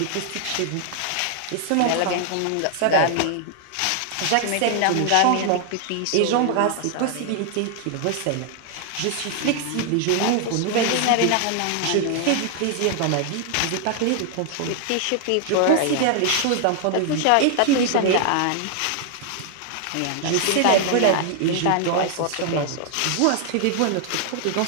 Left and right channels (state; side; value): different; both; correlation 0.00